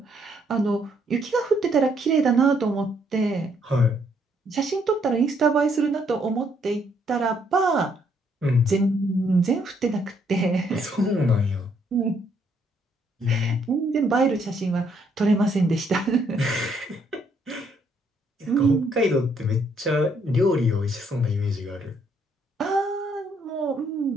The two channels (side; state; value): both; normal; correlation 0.70